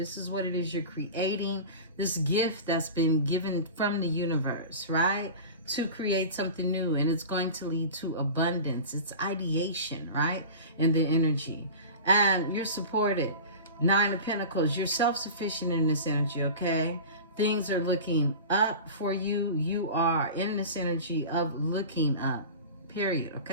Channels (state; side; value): inverted; both; correlation -0.33